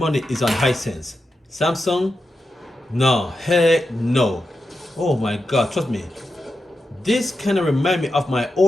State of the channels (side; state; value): both; normal; correlation 0.89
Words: is on Hisense. Samsung, no, heck no. Oh my God, trust me. This kind of remind me of my